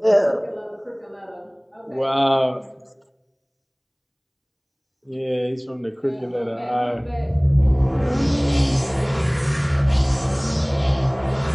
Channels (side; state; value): both; identical; correlation 1.00